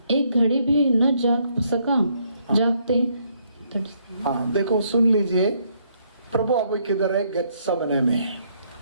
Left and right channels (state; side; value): inverted; both; correlation -0.71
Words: एक घड़ी भी न जागते? देखो सुन लीजिए, प्रभु अभी किधर है, गेत्सेमने में।